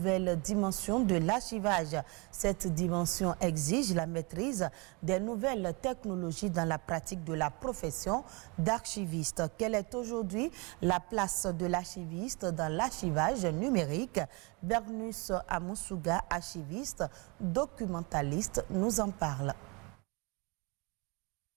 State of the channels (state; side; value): quieter; left; 29.4 dB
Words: dimension de l'archivage. Cette dimension exige la maîtrise des nouvelles technologies dans la pratique de la profession d'archiviste. Quelle est aujourd'hui la place de l'archiviste dans l'archivage numérique? Bernus Amoussouga, archiviste, documentaliste, nous en parle.